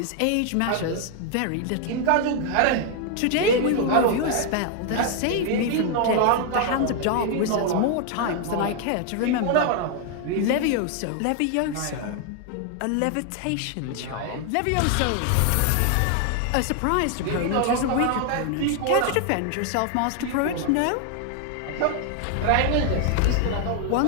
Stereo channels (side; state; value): both; different; correlation 0.00